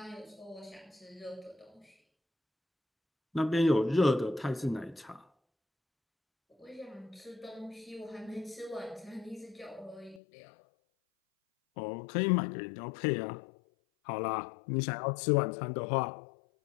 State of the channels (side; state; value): right; drops out; at 10.2 s